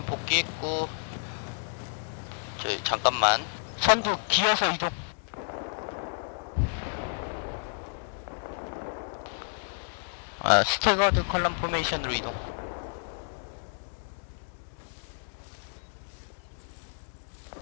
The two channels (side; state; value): right; silent; 57 dB below the other